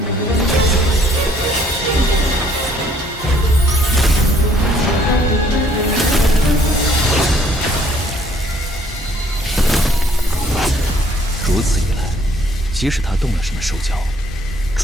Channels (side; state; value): both; normal; correlation 0.62